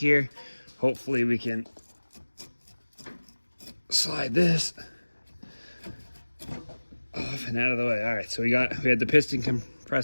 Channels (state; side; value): inverted; both; correlation -1.00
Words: hopefully we can slide this off and out of the way. All right, so we had the piston